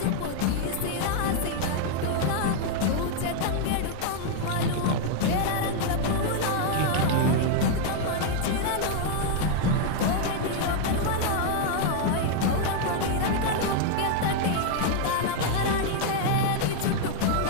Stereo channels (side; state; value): both; different; correlation 0.00